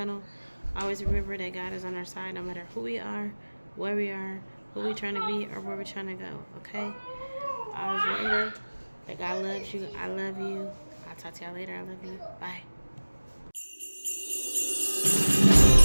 Always remember that God is on our side no matter who we are, where we are, who we're trying to be, or where we're trying to go. Okay? Always remember that God loves you. I love you. I'll talk to y'all later. I love you. Bye.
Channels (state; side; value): inverted; both; correlation -1.00